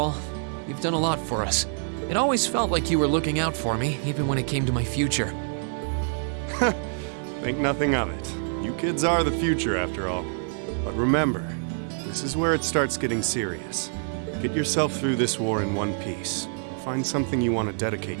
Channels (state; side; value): silent; left; digital silence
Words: You've done a lot for us. It always felt like you were looking out for me, even when it came to my future. Think nothing of it. You kids are the future, after all. But remember, this is where it starts getting serious. Get yourself through this war in one piece. Find something you want to dedicate